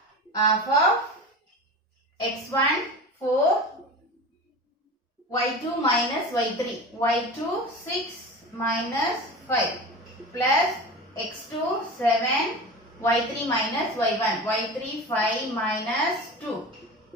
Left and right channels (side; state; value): both; normal; correlation 0.31